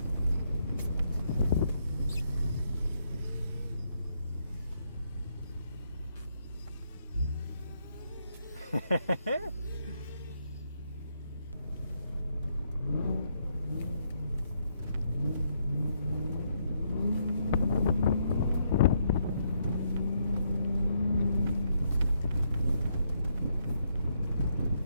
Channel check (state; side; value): inverted; both; correlation -0.75